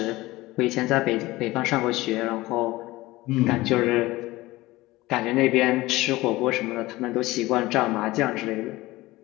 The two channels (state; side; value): quieter; right; 19.0 dB